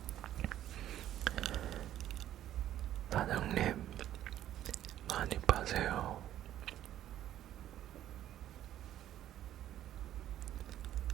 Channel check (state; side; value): quieter; left; 12.2 dB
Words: 사장님, 많이 파세요.